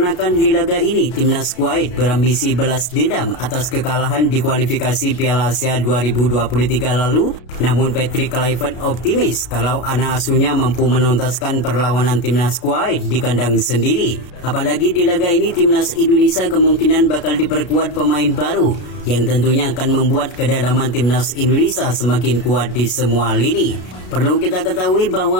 di laga ini Timnas Kuwait berambisi balas dendam atas kekalahan di kualifikasi Piala Asia 2023 lalu, namun Patrick Kluivert optimis kalau anak asuhnya mampu menuntaskan perlawanan Timnas Kuwait di kandang sendiri. Apalagi di laga ini Timnas Indonesia kemungkinan bakal diperkuat pemain baru yang tentunya akan membuat kedalaman Timnas Indonesia semakin kuat di semua lini. Perlu kita ketahui bahwa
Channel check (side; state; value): right; late; 33 ms